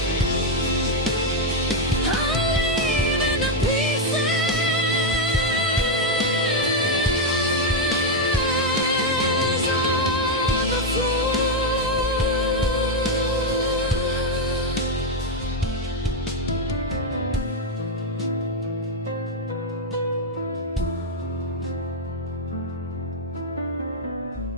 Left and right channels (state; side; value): normal; both; correlation 0.03